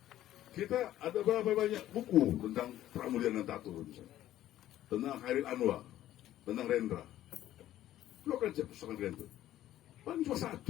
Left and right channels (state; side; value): quieter; right; 13.2 dB